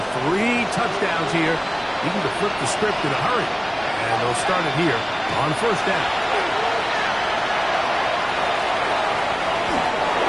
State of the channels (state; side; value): identical; both; correlation 1.00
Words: 3 touchdowns here, needing to flip the script in a hurry. And they'll start it here on 1st down.